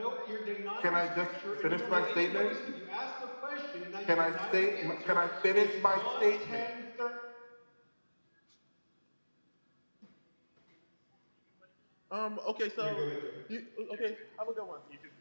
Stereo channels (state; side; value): inverted; both; correlation -1.00